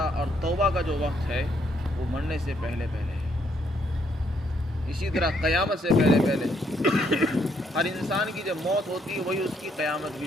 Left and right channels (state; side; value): normal; both; correlation 0.72